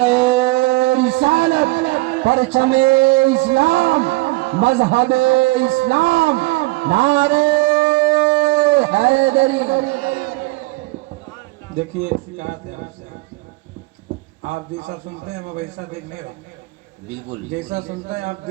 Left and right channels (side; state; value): left; quieter; 22.1 dB